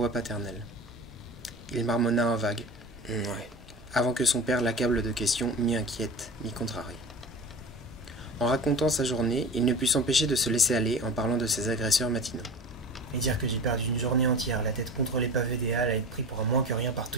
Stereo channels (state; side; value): normal; both; correlation 0.33